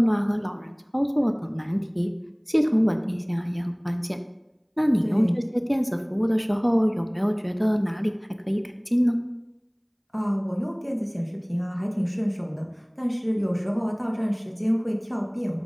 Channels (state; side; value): identical; both; correlation 1.00